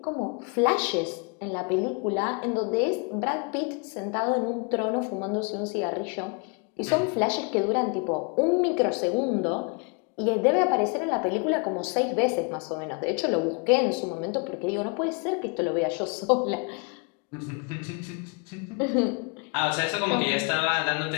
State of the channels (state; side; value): quieter; right; 34.7 dB